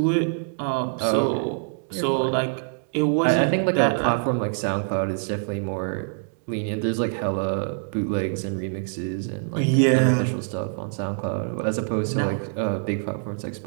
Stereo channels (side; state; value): left; silent; digital silence